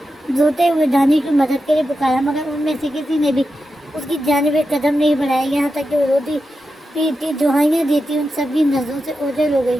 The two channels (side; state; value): both; normal; correlation 0.90